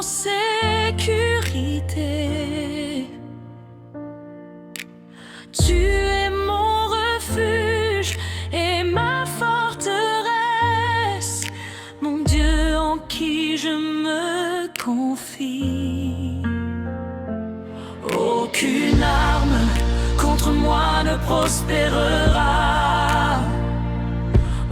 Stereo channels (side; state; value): both; identical; correlation 1.00